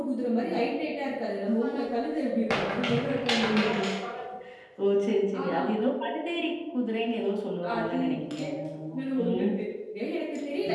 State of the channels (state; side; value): identical; both; correlation 1.00